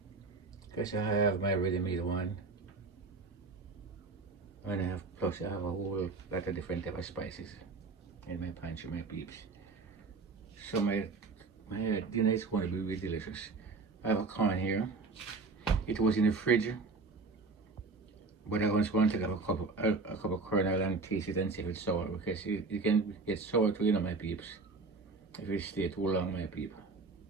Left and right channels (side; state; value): left; quieter; 4.0 dB